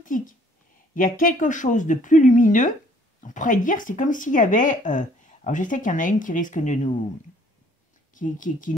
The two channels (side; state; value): both; normal; correlation 0.60